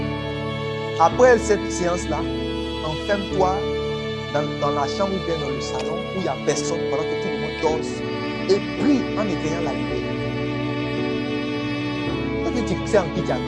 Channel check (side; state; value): both; identical; correlation 1.00